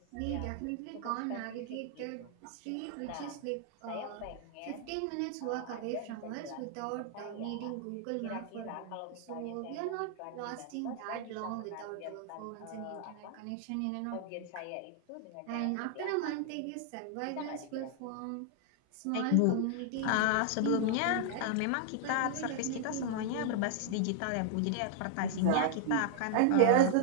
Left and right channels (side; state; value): both; different; correlation 0.00